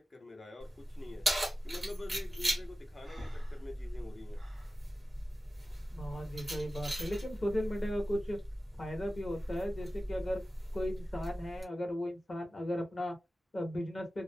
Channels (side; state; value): both; normal; correlation 0.95